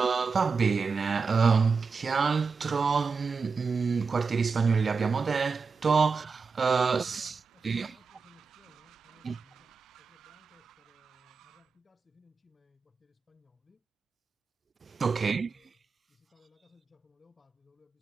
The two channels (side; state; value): left; quieter; 4.9 dB